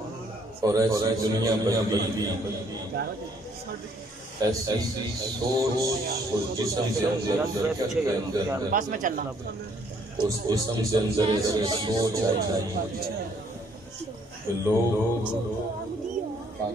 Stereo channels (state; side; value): normal; both; correlation 0.65